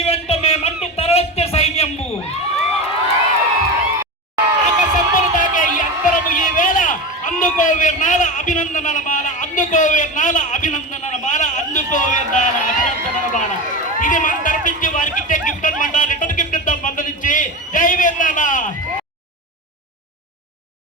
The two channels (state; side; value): normal; both; correlation 0.24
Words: వెంట మేమంటూ తరలిచ్చే సైన్యము. ఆకాశంబులు తాకే ఈ అంతరము ఈ వేళ, అందుకో వీర్నాల అభినందనల మాల, అందుకో వీర్నాల అభినందనల మాల, అందుకో వీర్నాల అభినందనల మాల. ఇది మన తరపించి వారికి ఇచ్చే గిఫ్ట్ అనమాట. రిటర్న్ గిఫ్ట్ ఇద్దాం మందరించి. జై వీర్నాల.